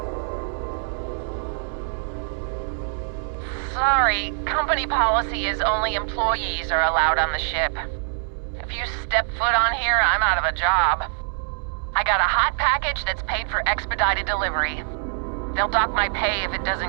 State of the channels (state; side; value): silent; left; 63 dB below the other